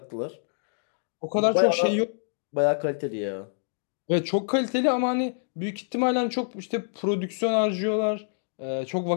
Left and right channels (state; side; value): silent; right; digital silence